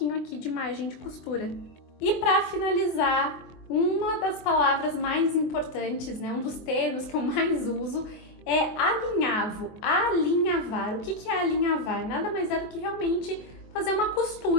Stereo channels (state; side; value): late; right; 23 ms